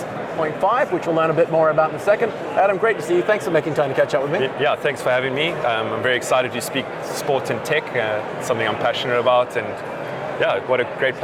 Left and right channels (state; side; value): identical; both; correlation 1.00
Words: which we'll learn a bit more about in a second. Adam, great to see you. Thanks for making time to catch up with me. Yeah, thanks for having me. I'm very excited to speak sport and tech, something I'm passionate about, and yeah, what a great